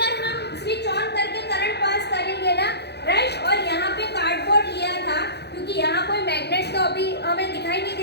हम स्विच ऑन करके करंट पास करेंगे ना, राइट, और यहाँ पे कार्डबोर्ड लिया था क्योंकि यहाँ कोई मैग्नेट तो अभी हमें दिखाई नहीं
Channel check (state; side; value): late; right; 0.48 ms